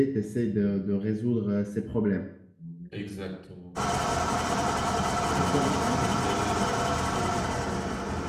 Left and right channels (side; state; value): both; identical; correlation 1.00